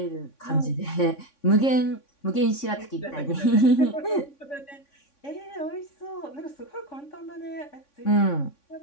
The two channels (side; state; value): right; late; 3.6 ms